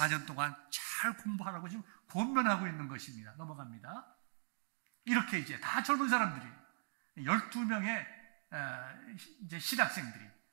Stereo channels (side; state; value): left; silent; digital silence